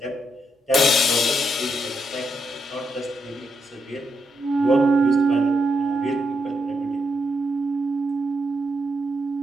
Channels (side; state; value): both; normal; correlation 0.81